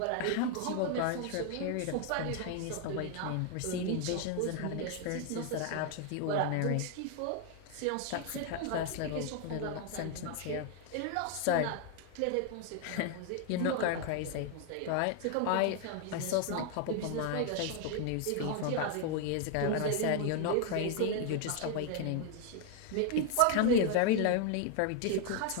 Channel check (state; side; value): different; both; correlation 0.00